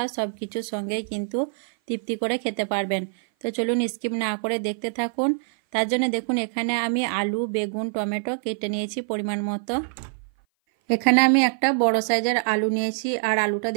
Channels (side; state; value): left; silent; 57 dB below the other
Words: সব কিছুর সঙ্গেই কিন্তু তৃপ্তি করে খেতে পারবেন। তো চলুন স্কিপ না করে দেখতে থাকুন। তার জন্য দেখুন এখানে আমি আলু, বেগুন, টমেটো কেটে নিয়েছি পরিমাণ মতো। এখানে আমি একটা বড় সাইজের আলু নিয়েছি, আর আলুটা